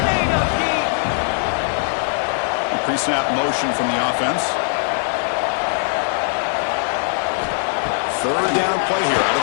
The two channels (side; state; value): right; silent; digital silence